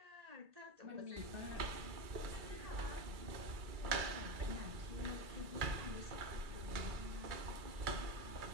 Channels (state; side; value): late; left; 2.3 ms